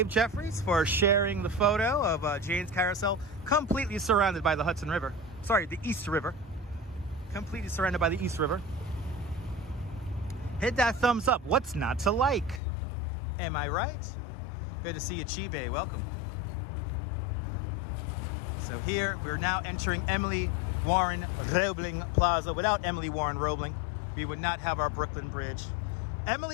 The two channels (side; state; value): right; drops out; at 12.6 s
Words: Jeffries, for sharing the photo of Jane's Carousel, completely surrounded by the Hudson River. Sorry, the East River. Completely surrounded by the East River. Hit that thumbs up. What's not to like? Am I right? Good to see you, Chibe. Welcome. So here, we're now entering Emily Warren Roebling Plaza. Without Emily Warren Roebling, we would not have our Brooklyn Bridge.